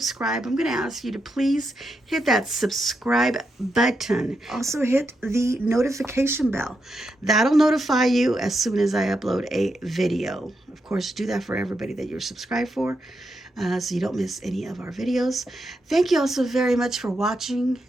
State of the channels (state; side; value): normal; both; correlation 0.84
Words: I'm going to ask you to please hit that subscribe button. Also hit the notification bell. That'll notify you as soon as I upload a video. Of course, do that for everybody that you're subscribed for, so you don't miss any of our videos. Thank you all so very much for watching,